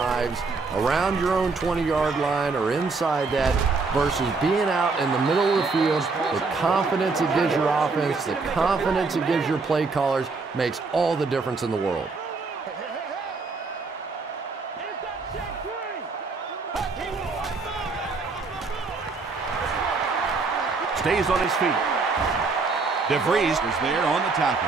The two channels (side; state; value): left; quieter; 4.2 dB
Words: around your own 20-yard line or inside that versus being out in the middle of the field. The confidence it gives your offense, the confidence it gives your play callers makes all the difference in the world. Stays on his feet. DeVries is there on the tackle.